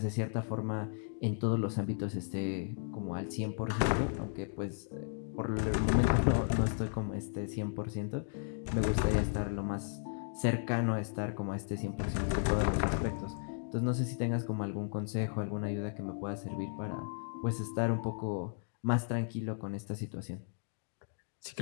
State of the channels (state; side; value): silent; right; digital silence